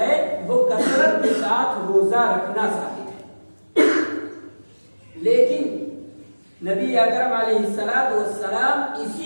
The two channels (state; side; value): inverted; both; correlation -1.00